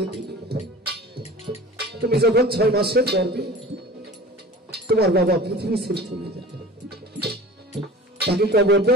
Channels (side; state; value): both; normal; correlation 0.40